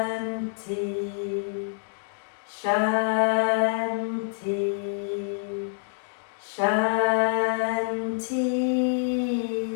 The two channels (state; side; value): silent; right; digital silence